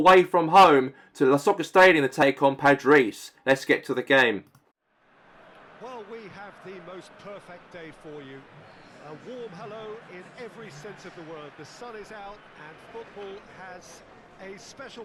from home to the Soccer Stadium to take on Padres. Let's get to the game. Well, we have the most perfect day for you. A warm hello in every sense of the word. The sun is out and football has a special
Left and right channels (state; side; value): identical; both; correlation 1.00